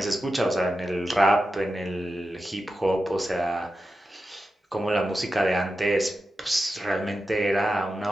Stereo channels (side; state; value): both; normal; correlation 0.91